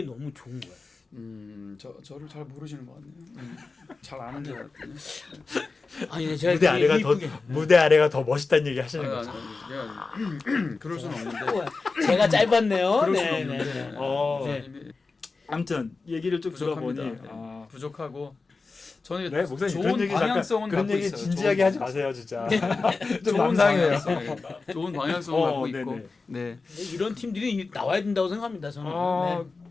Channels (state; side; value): quieter; right; 4.0 dB